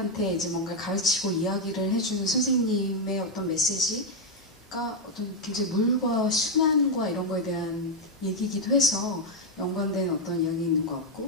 이제 뭔가 가르치고 이야기를 해주는 선생님의 어떤 메시지가 어떤 굉장히 물과 순환과 이런 거에 대한 얘기이기도 해서 연관된 어떤 이야기 있는 것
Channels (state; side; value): normal; both; correlation 0.02